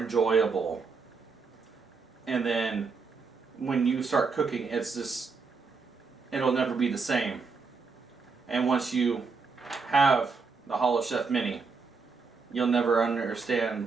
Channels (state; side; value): quieter; left; 4.7 dB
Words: And then when you start cooking, it's just, it'll never be the same. And once you have the HoloChef Mini, you'll never